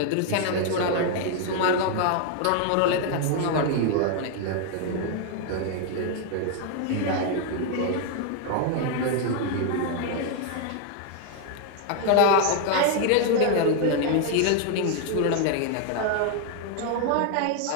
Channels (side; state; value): both; different; correlation 0.00